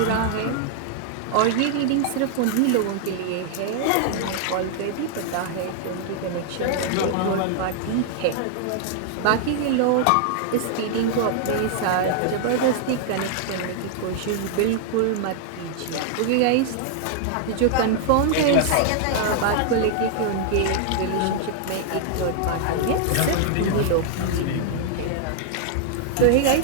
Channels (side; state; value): both; different; correlation 0.00